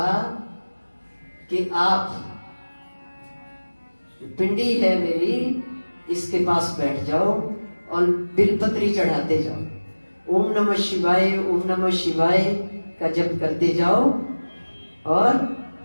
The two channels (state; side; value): inverted; both; correlation -1.00